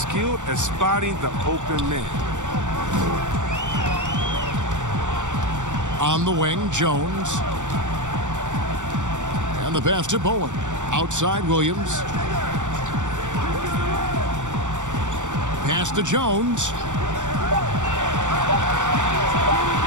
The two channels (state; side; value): late; left; 0.85 ms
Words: at spotting the open man. On the wing, Jones. And the pass to Bowen. Outside, Williams. Pass to Jones.